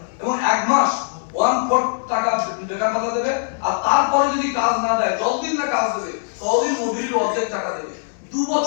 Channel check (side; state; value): right; silent; digital silence